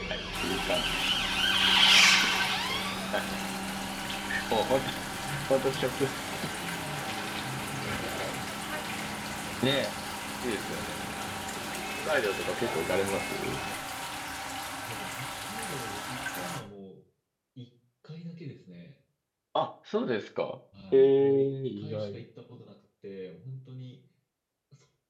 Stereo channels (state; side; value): identical; both; correlation 1.00